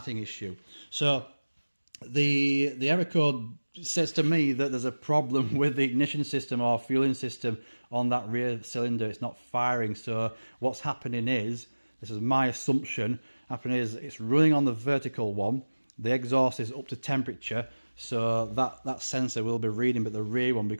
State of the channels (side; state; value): both; inverted; correlation -1.00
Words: issue. So the error code says to me that there's a problem with the ignition system or fueling system on that rear cylinder. It's not firing. So what's happening is, this is my assumption, happening is it's running on the vertical one. The exhaust is up to temperature, so that sensor will be reading, but the rear one,